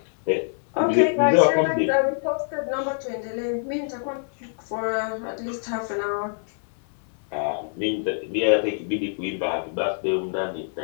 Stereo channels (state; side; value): silent; right; digital silence